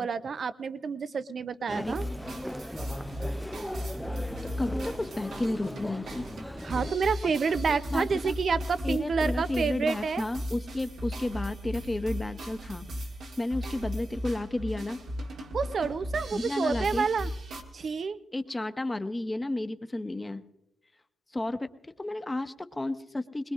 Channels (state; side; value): normal; both; correlation 0.91